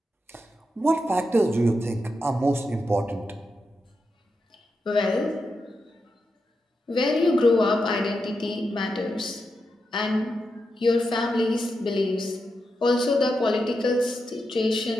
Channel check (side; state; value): both; normal; correlation 0.87